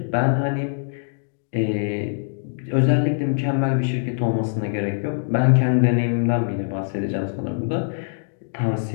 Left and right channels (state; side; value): silent; right; digital silence